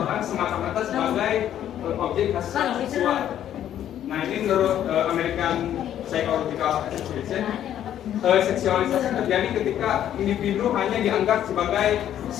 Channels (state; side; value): quieter; right; 10.9 dB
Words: semata-mata sebagai objek seksual. Nah ini menurut American psychological association. Seksualisasi terjadi ketika individu hanya dianggap sebagai